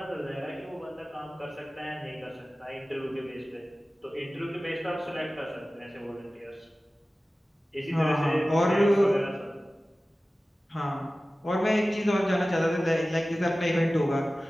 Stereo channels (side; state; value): both; normal; correlation 0.96